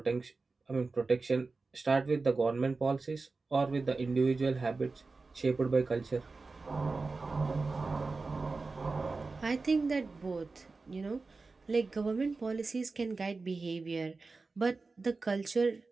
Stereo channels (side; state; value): left; quieter; 3.9 dB